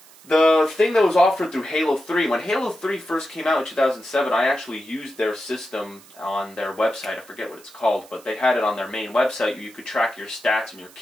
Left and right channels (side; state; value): right; noise; hiss, 24 dB below the sound